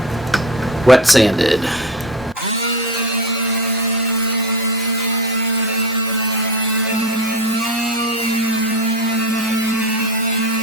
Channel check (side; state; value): both; normal; correlation 0.26